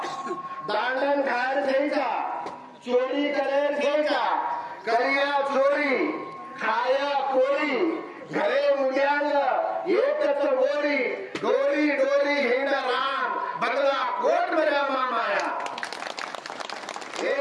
दांडन खायर घ्यायचा चोरी करेर घ्यायचा करिया चोरी खाया कोरी घरे मुल्यांग एकच गोरी डोरी डोरी हिंडा राम बदला कोट मेरा माया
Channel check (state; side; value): identical; both; correlation 1.00